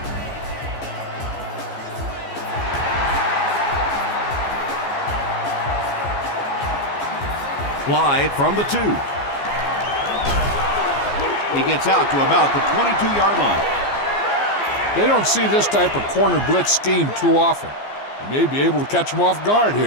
Slide from the 2. He gets out to about the 22-yard line. They don't see this type of corner blitz scheme too often. You may be able to catch them off guard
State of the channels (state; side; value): late; right; 14 ms